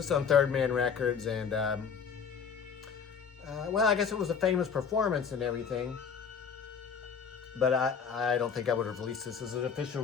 is on Third Man Records, and well, I guess it was a famous performance and everything, but I don't think I would have released this as an official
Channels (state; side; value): quieter; right; 6.5 dB